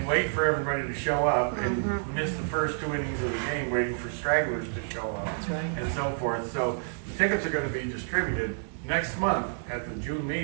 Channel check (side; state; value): left; silent; digital silence